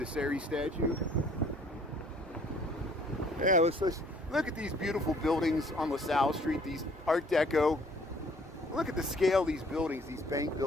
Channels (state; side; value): normal; both; correlation 0.58